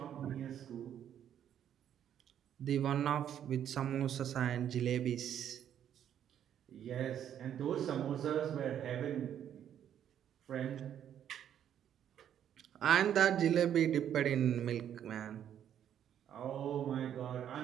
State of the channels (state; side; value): quieter; left; 9.8 dB